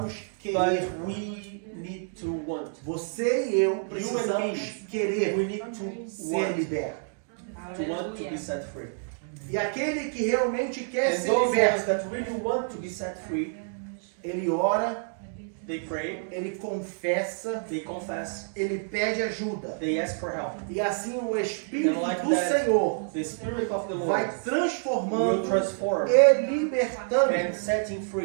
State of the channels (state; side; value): silent; left; digital silence